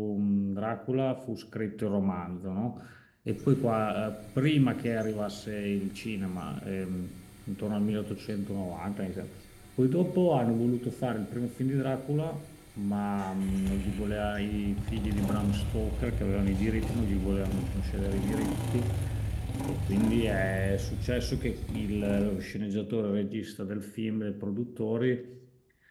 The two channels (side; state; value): both; identical; correlation 1.00